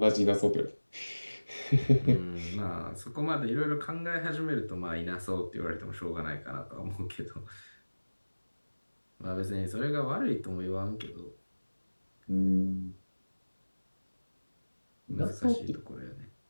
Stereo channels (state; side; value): inverted; both; correlation -1.00